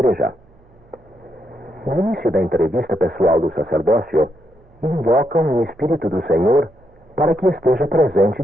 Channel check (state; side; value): noise; right; hum, 30 dB below the sound